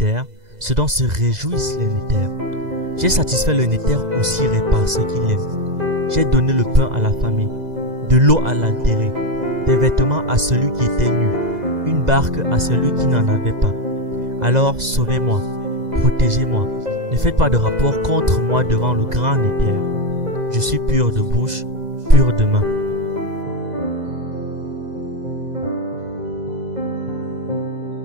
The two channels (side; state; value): left; late; 2.0 ms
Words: ce dont se réjouissent les Néther. J'ai satisfait le Néther aussi par ce qu'il aime. J'ai donné le pain à la famille, de l'eau à l'altéré, des vêtements à celui qui était nu, une barque à celui qui n'en avait pas. Alors sauvez-moi, protégez-moi, ne faites pas de rapport contre moi devant le grand Néther. Je suis pur de bouche, pur de main.